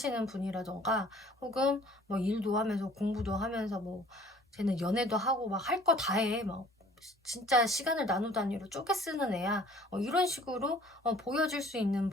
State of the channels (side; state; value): both; normal; correlation 0.53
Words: 분이라던가, 혹은 뭐 일도 하면서 공부도 하면서 뭐 쟤는 연애도 하고 막 할 거 다 해. 막 진짜 시간을 나누 단위로 쪼개 쓰는 애야. 이런 식으로 보여질 수 있는